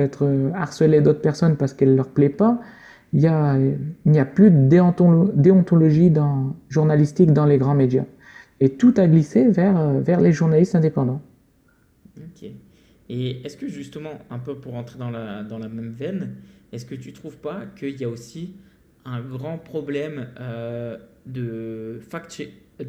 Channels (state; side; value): identical; both; correlation 1.00